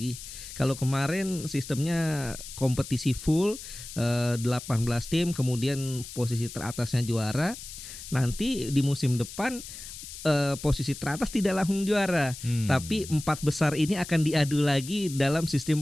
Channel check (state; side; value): noise; left; hiss, 12 dB below the sound